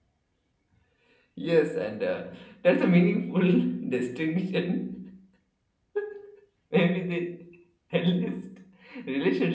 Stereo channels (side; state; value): both; identical; correlation 1.00